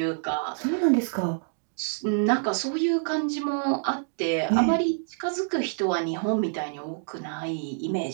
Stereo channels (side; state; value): left; silent; digital silence